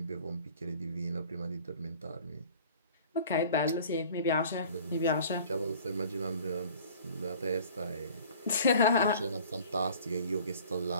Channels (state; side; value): inverted; both; correlation -0.48